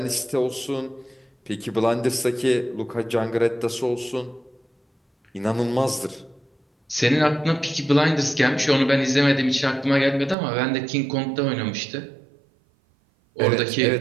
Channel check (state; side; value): drops out; left; at 10.4 s